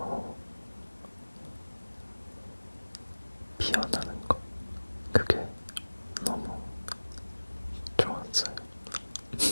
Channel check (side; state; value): both; inverted; correlation -1.00